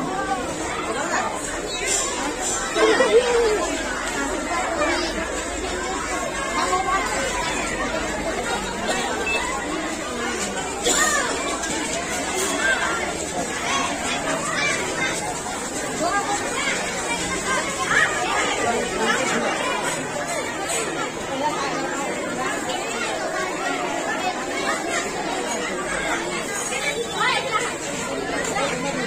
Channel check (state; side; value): identical; both; correlation 1.00